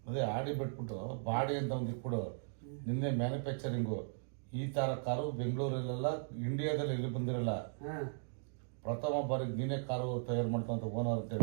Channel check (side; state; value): left; silent; digital silence